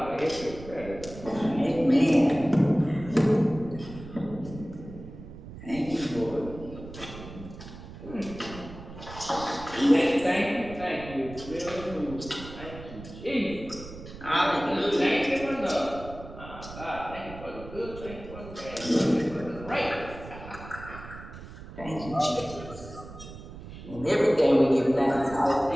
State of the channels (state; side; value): noise; right; rumble, 14 dB below the sound